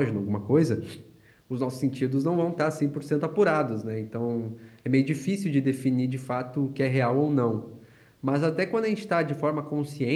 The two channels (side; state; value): both; identical; correlation 1.00